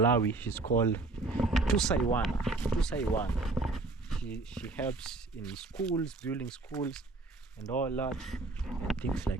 She's called Tusaiwana. She helps in schools, building schools, and all that, and things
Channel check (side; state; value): left; quieter; 3.5 dB